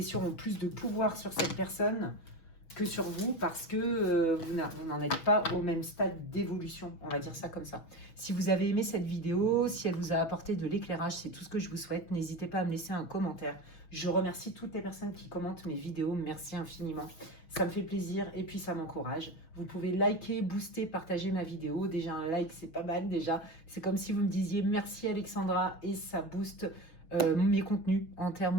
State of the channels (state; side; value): late; right; 6.2 ms